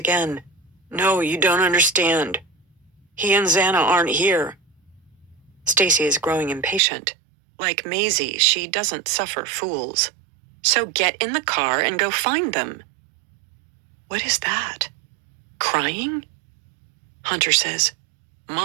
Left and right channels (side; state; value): left; drops out; at 6.8 s